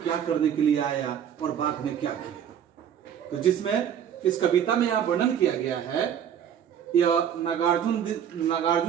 क्या करने के लिए आया और बाघ ने क्या किया। तो जिसमें इस कविता में यह वर्णन किया गया है, यह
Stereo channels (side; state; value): left; quieter; 9.0 dB